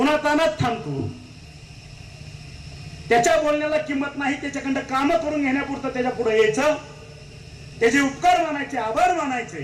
थांबतो, त्याच्या बोलण्याला किंमत नाही, त्याच्याकडे काम करून घेण्यापुरतं त्याच्या पुढे यायचं, त्याचे उपकार मानायचे, आभार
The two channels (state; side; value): identical; both; correlation 1.00